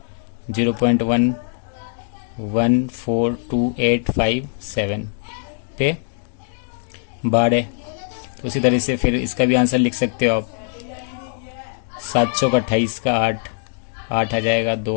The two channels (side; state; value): right; silent; digital silence